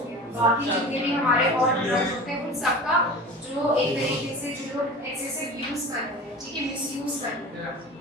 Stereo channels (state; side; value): normal; both; correlation 0.35